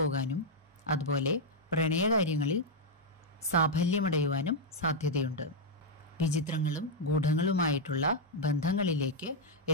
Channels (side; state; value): both; normal; correlation -0.02